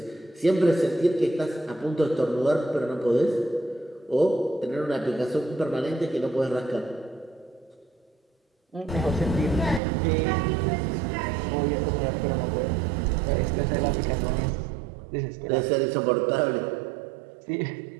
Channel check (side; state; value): left; drops out; at 9.8 s